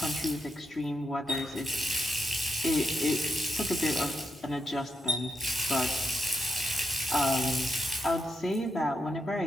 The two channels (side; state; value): both; normal; correlation 0.84